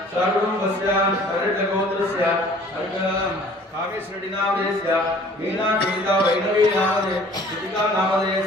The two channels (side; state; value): both; normal; correlation 0.52